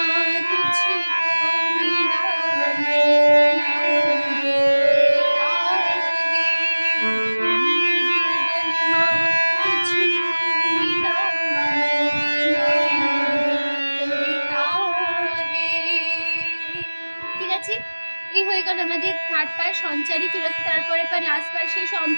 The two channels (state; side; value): inverted; both; correlation -1.00